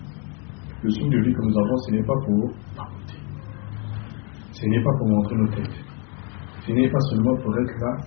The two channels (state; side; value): quieter; right; 34.3 dB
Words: Le souffle de vie que nous avons, ce n'est pas pour papoter. Ce n'est pas pour montrer nos têtes. Ce n'est pas seulement pour être là,